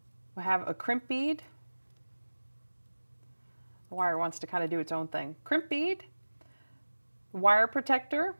We'll have a crimp bead. The wire wants to kind of do its own thing. Crimp bead, wire protector,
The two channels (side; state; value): both; inverted; correlation -1.00